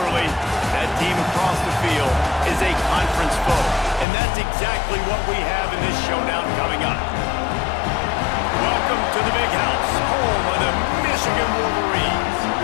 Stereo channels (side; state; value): right; drops out; at 4.0 s